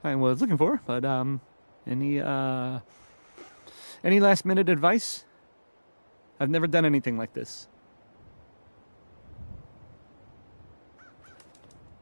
I was looking for, but, any last minute advice? I've never done anything like this.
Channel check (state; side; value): inverted; both; correlation -1.00